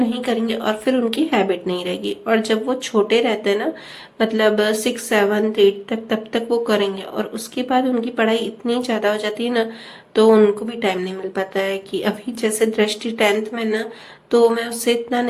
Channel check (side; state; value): both; identical; correlation 1.00